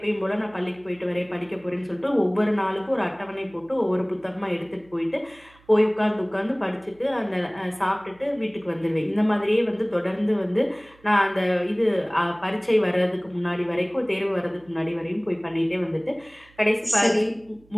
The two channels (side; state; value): right; noise; hum, 29 dB below the sound